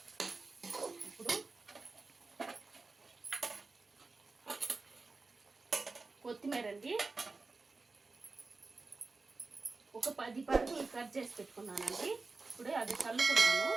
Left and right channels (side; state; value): left; quieter; 3.8 dB